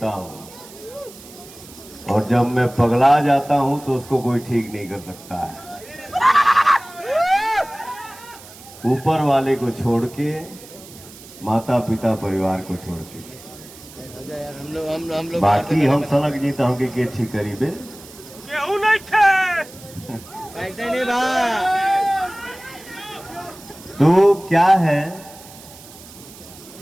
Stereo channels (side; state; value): right; noise; hiss, 19 dB below the sound